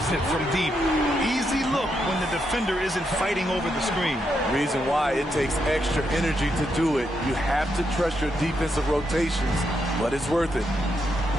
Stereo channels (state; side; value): normal; both; correlation 0.81